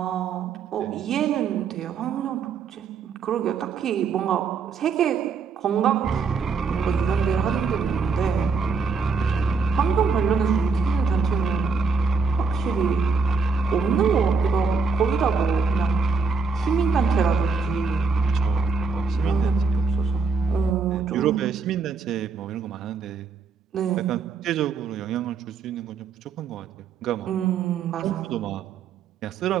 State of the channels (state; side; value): quieter; left; 5.1 dB